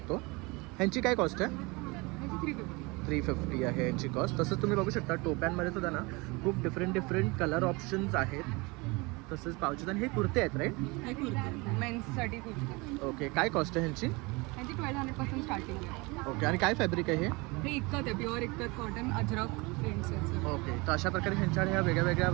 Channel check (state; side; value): quieter; left; 25.8 dB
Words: ह्यांची काय कॉस्ट आहे? ह्याची 350. 350 आहे यांची कॉस्ट. तसंच तुम्ही बघू शकता टोप्यांमध्ये सुद्धा ना खूप डिफरंट कलर ऑप्शन्स आहेत. तसंच पावचेस. आणि हे कुर्ते आहेत राईट? हे कुर्ते मेन्ससाठी कुर्ते. ओके. काय कॉस्ट आहे ह्यांची? ह्याची 1200 पासून स्टार्टिंग आहे. ओके. आणि काय फॅब्रिक आहे हे? हे इतकत आहे, प्युअर इतकत कॉटन, अजरक प्रिंट्स आहेत सगळे. ओके. तर अशा प्रकारे ह्यांच्या ह्या वेगळ्या वेगळ्या